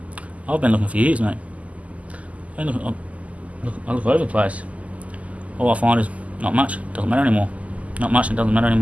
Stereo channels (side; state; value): left; late; 0.070 ms